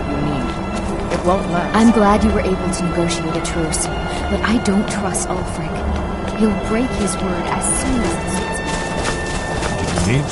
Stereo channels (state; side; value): identical; both; correlation 1.00